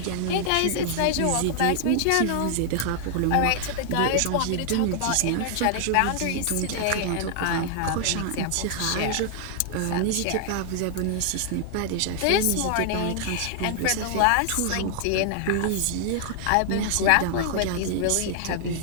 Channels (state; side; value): different; both; correlation 0.00